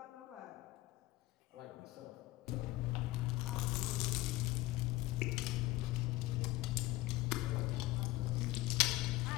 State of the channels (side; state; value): right; quieter; 18.6 dB